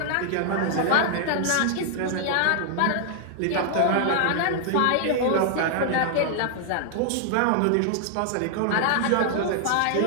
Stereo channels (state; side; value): different; both; correlation 0.00